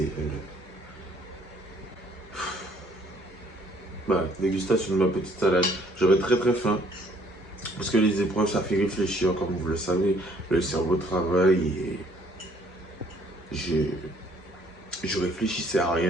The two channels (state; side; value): normal; both; correlation 0.61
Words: Bah, dégustation de ma petite salade. J'avais très très faim. Parce que les épreuves, ça fait réfléchir, comme vous le savez. Le cerveau travaille et... Je réfléchissais à